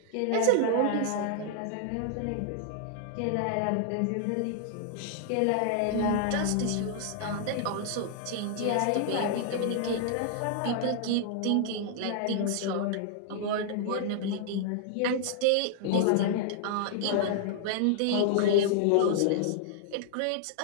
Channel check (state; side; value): different; both; correlation -0.01